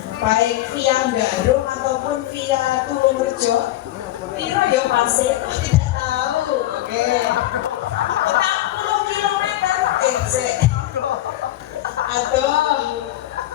Baik via Garung ataupun via Tulungrejo? Piro ya pasir? Tidak tahu. Oke. 40 kilometer.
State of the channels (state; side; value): quieter; right; 14.9 dB